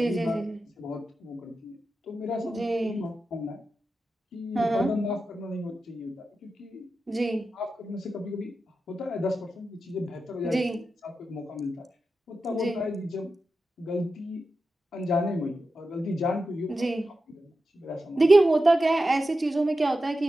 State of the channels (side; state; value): both; normal; correlation 0.91